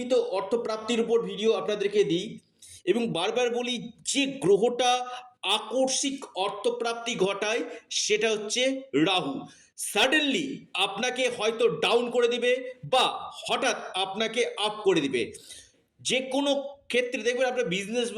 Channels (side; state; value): both; identical; correlation 1.00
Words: অর্থপ্রাপ্তির উপর ভিডিও আপনাদেরকে দিই এবং বারবার বলি, যে গ্রহটা আকস্মিক অর্থপ্রাপ্তি ঘটায় সেটা হচ্ছে রাহু। সাডেনলি আপনাকে হয়তো ডাউন করে দিবে বা হঠাৎ আপনাকে আপ করে দিবে। যে কোনো ক্ষেত্রে দেখবেন, আপনার বিজনেস